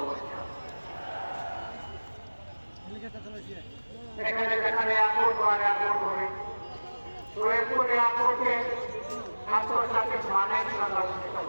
এখানে যেখানে এয়ারপোর্ট বা এয়ারপোর্ট হবে, সৈয়দপুর এয়ারপোর্টে আন্তর্জাতিক মানের সংরক্ষিত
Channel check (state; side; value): inverted; both; correlation -1.00